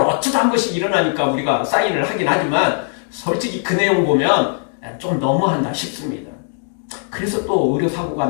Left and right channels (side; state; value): right; silent; 61 dB below the other